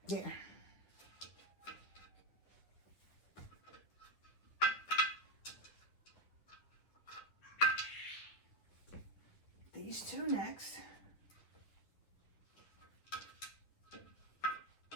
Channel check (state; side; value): late; right; 10 ms